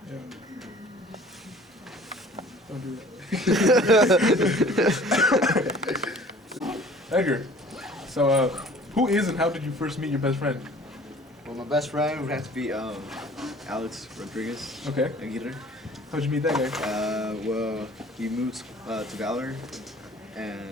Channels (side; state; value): both; normal; correlation 0.49